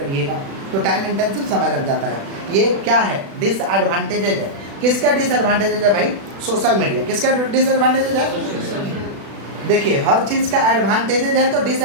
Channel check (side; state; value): left; late; 36 ms